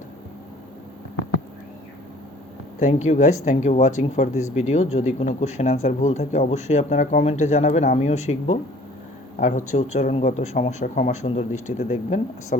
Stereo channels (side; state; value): both; normal; correlation 0.51